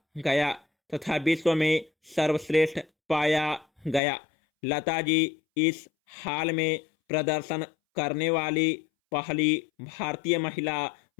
गया तथा विश्व में सर्वश्रेष्ठ पाया गया। लता जी इस हाल में प्रदर्शन करने वाली पहली भारतीय महिला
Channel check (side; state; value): right; drops out; at 4.0 s